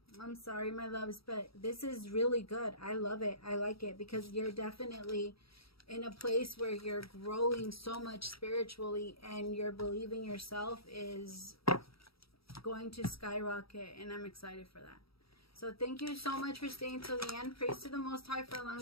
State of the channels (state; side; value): late; right; 0.76 ms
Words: I'm sorry, my loves, but this is really good. I love it. I like it because you're definitely in a place where you're growing so much spiritually, and your believing yourself is going to skyrocket, and I'm excited for that. So thank you so much for staying till the end. Praise to the Most High for